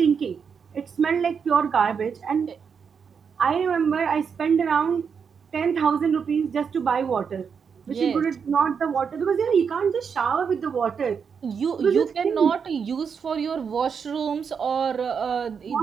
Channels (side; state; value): left; quieter; 6.4 dB